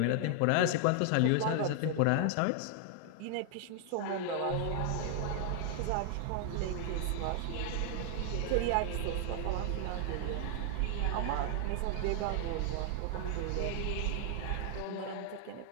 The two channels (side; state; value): both; different; correlation 0.00